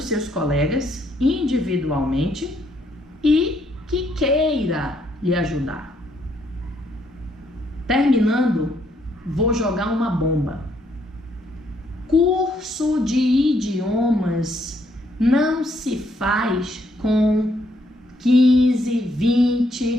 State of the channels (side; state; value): both; normal; correlation 0.72